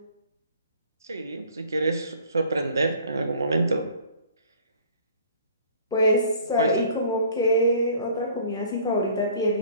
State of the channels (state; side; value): inverted; both; correlation -0.51